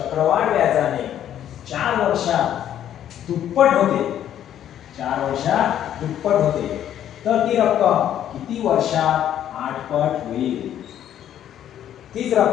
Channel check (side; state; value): right; quieter; 10.7 dB